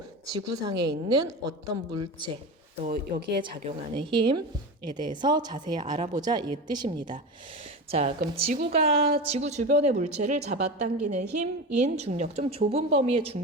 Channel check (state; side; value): normal; both; correlation 0.25